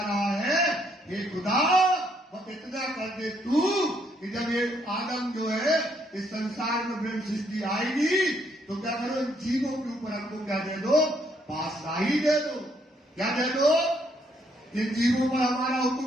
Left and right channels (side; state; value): both; normal; correlation 0.71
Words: रहा है, हे खुदा वो इतना कर दे तू कि जब ये आदम जो है इस संसार में ब्रह्म सृष्टि आएगी तो क्या करो, इन जीवों के ऊपर हमको क्या दे दो? पातशाही दे दो। क्या दे दो? इन जीवों पर हमारा